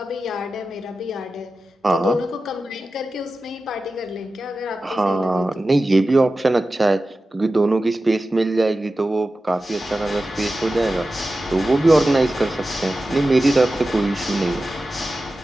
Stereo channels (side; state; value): both; normal; correlation 0.94